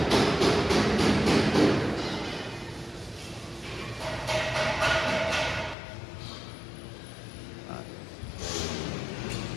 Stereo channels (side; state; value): right; drops out; at 5.8 s